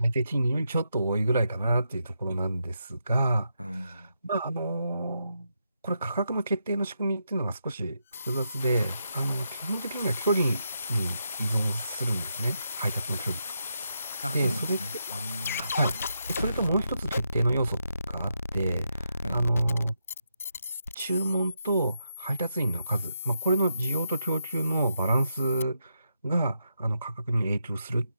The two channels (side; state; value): both; inverted; correlation -0.83